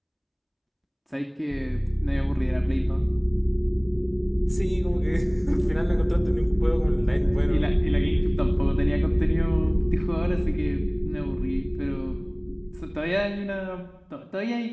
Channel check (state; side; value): identical; both; correlation 1.00